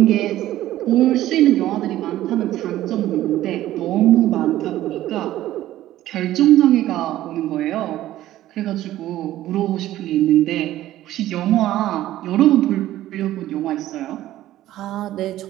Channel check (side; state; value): left; quieter; 14.2 dB